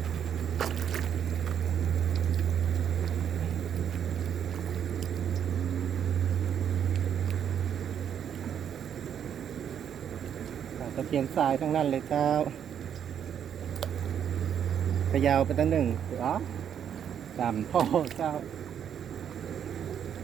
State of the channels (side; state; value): left; quieter; 8.8 dB